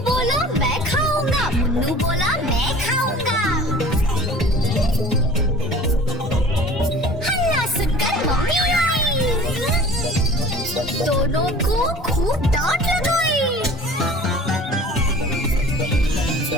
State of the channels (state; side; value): normal; both; correlation 0.45